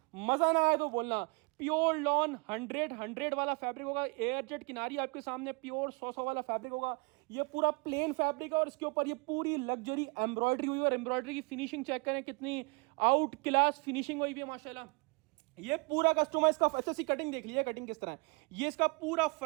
मजा ना आए तो बोलना। प्योर लॉन 100 वाला फैब्रिक होगा, एयर जेट किनारी आपके सामने प्योर 100 वाला फैब्रिक होगा। ये पूरा प्लेन फैब्रिक है और इसके ऊपर ये पूरी लग्जरी एम्ब्रॉयडरी हुई है। और एम्ब्रॉयडरी की फिनिशिंग चेक करें कितनी आउट क्लास फिनिशिंग हुई भी है माशाल्लाह। ये पूरा कस्टमर इसका अच्छा सी कटिंग देख लीजिए, कटिंग किस तरह है। ये इसका पूरा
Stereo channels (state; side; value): quieter; left; 31.8 dB